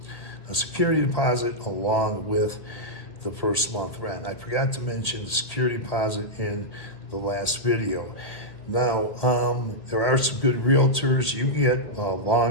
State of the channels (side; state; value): right; late; 1.8 ms